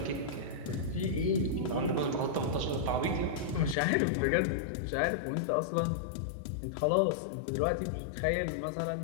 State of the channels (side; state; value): right; drops out; at 3.8 s